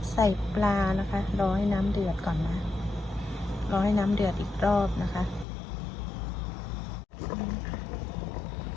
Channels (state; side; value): drops out; right; at 5.5 s